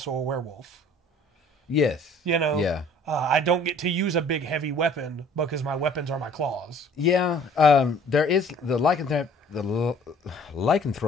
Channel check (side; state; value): both; normal; correlation 0.53